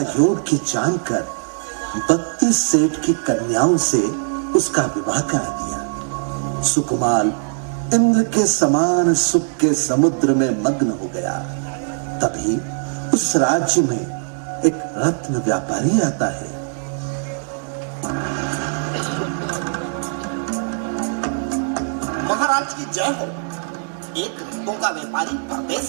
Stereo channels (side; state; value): left; silent; digital silence